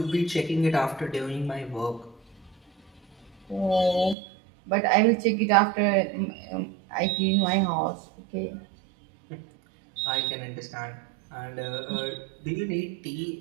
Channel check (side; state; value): left; drops out; at 4.2 s